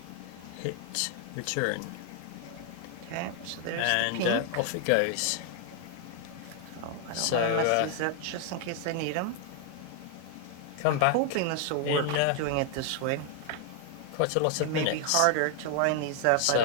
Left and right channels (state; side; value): different; both; correlation 0.00